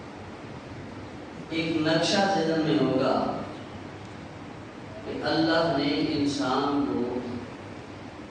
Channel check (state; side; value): identical; both; correlation 1.00